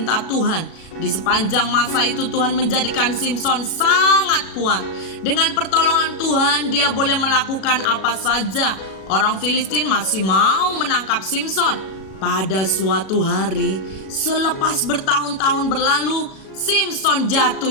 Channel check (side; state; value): right; late; 37 ms